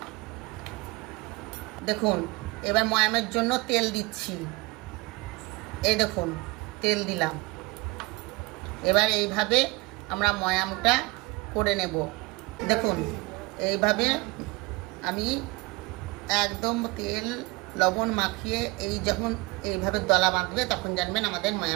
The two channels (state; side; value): quieter; left; 24.6 dB